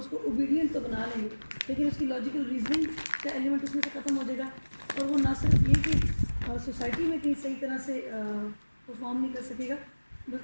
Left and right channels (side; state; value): both; inverted; correlation -1.00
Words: ओबीडियंट तो बना लेंगे, लेकिन उसकी लॉजिकल रीजनिंग का एलिमेंट उसमें से ख़त्म हो जाएगा और वो ना सिर्फ ये कि सोसाइटी में कहीं सही तरह से परफॉर्म नहीं कर सकेगा,